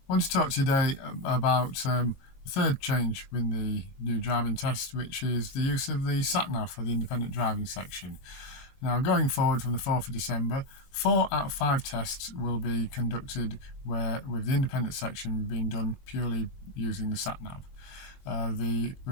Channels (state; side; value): late; right; 22 ms